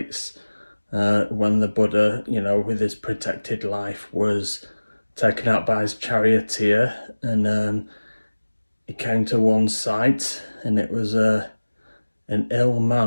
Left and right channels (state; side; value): inverted; both; correlation -1.00